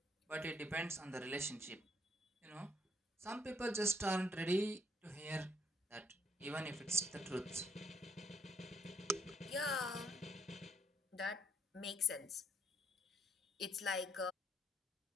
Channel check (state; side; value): normal; both; correlation 0.66